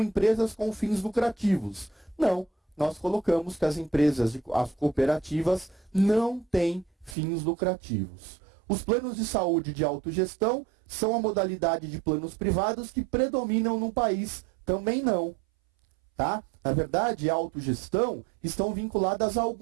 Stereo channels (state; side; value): drops out; left; at 7.2 s